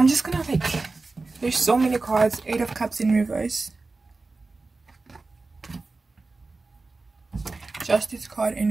just gonna like, there's so many cards. 8 of Cups in reverse. Justice card in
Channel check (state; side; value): quieter; left; 3.6 dB